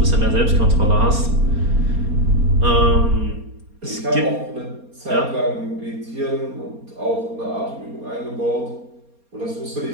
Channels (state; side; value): late; left; 4.3 ms